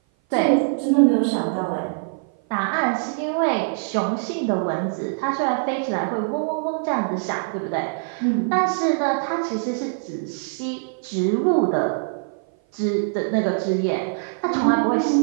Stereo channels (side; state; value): left; silent; 56 dB below the other